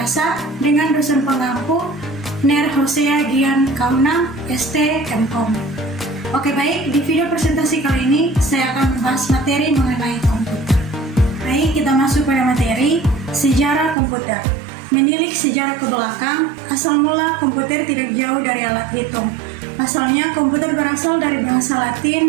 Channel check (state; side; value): drops out; left; at 14.0 s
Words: dengan dosen pengampu Ner Hosea Gian Kaunang, ST MKOM. Oke baik, di video presentasi kali ini saya akan membahas materi mengenai komputer. Baik, kita masuk pada materi sejarah komputer. Menilik sejarah ke belakang, asal mula komputer tidak jauh dari alat hitung. Pasalnya, komputer berasal dari bahasa